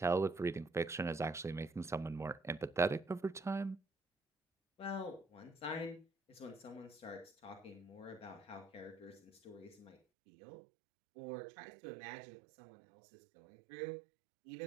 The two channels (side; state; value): left; drops out; at 10.0 s